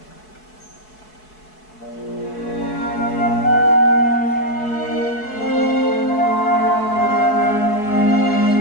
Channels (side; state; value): right; late; 4.7 ms